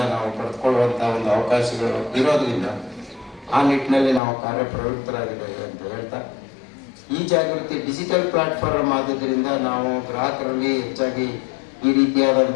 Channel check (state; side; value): drops out; right; at 4.2 s